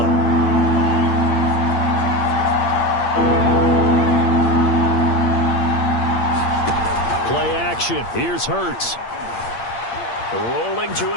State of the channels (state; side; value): late; right; 8.7 ms